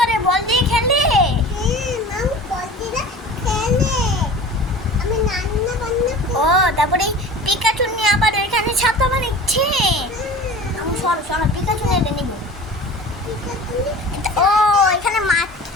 বল দিয়ে খেলে? হ্যাঁ, মাও বলদিরা খেলে। আমি রান্না বান্না ও তারপরে এই পিকাচু নিয়ে আবার এখানে ছাতা বানাচ্ছে। আমি সরো পিকাচু নিয়ে নিব। ও এখানে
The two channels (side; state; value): both; normal; correlation 0.39